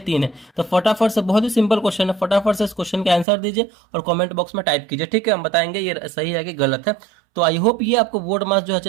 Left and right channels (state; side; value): drops out; left; at 3.2 s